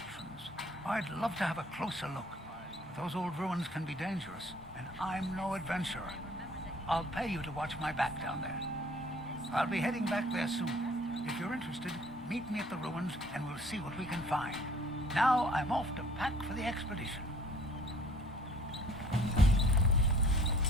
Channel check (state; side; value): normal; both; correlation 0.55